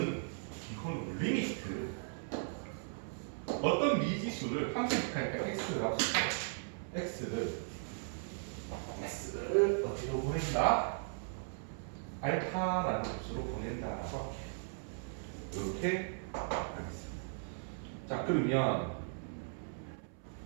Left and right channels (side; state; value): left; silent; 53 dB below the other